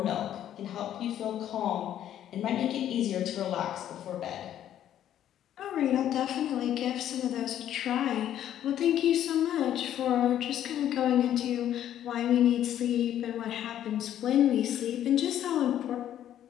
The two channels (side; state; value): right; quieter; 11.1 dB